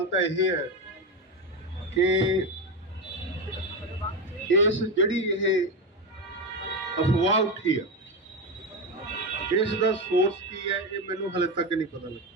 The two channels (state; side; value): normal; both; correlation 0.15